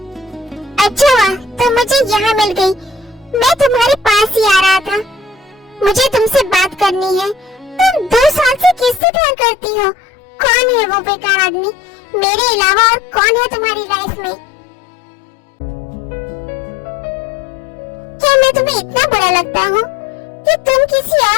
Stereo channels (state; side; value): drops out; right; at 9.0 s